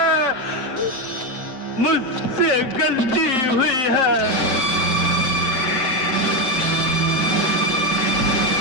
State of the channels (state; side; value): late; right; 7.5 ms